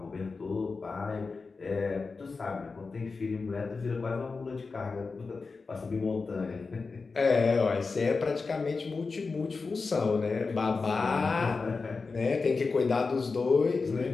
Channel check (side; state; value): right; quieter; 4.3 dB